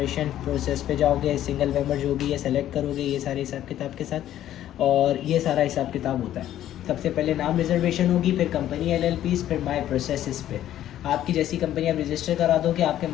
Process पे जाओगे, सिंगल मेंबर जो भी है सेलेक्ट करोगे, ये सारे हिसाब किताब के साथ, और ये सारा हिसाब किताब होता है। सबसे पहले नाम रिजर्वेशन होगी, फिर कंपनी LLPs, फिर माई प्रोसेसेस पे आपकी जैसी कंपनी आप रजिस्टर करा दो कि आपके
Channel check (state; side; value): quieter; right; 12.2 dB